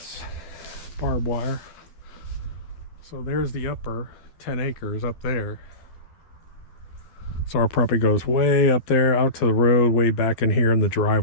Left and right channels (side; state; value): right; late; 12 ms